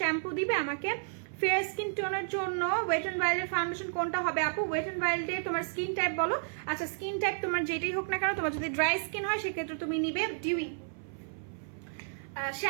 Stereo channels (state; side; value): silent; left; 57 dB below the other